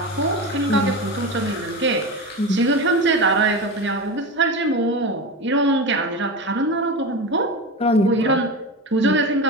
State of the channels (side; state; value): both; normal; correlation 0.24